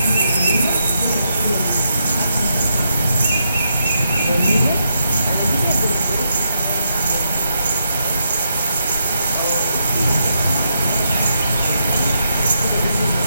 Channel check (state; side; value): inverted; both; correlation -0.81